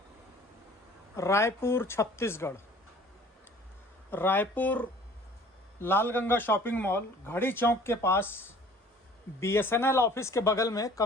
Raipur Chhattisgarh. Raipur लाल Ganga shopping mall घड़ी चौक के पास BSNL office के बगल में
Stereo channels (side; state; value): both; normal; correlation 0.50